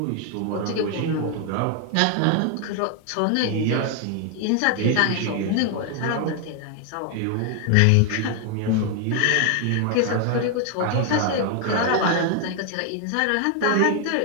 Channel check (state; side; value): different; both; correlation 0.01